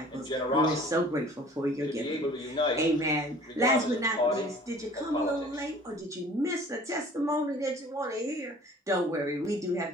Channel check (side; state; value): both; normal; correlation 0.49